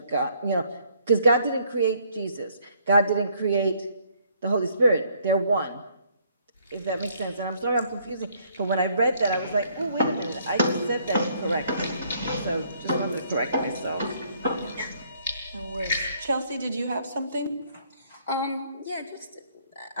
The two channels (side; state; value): both; inverted; correlation -0.66